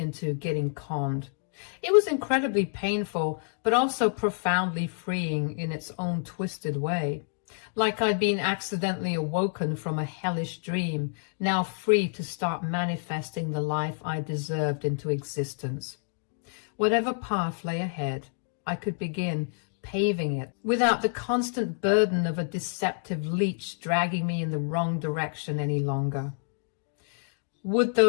getting conned. It was incredibly painful, but also profoundly freeing in its own twisted way. Like I'd been accidentally awoken from a hellish dream, now free to start manifesting the life I deserved into existence. Whatever path lay ahead, I could begin paving it without the constant burden of a deceptive leech dragging me in the wrong direction any longer. Would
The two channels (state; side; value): silent; right; digital silence